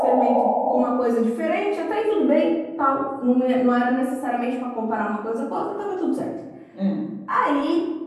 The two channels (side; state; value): both; identical; correlation 1.00